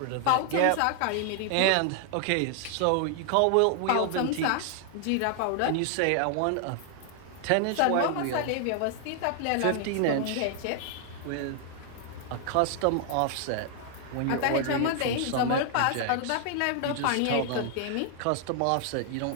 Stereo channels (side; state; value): both; different; correlation 0.00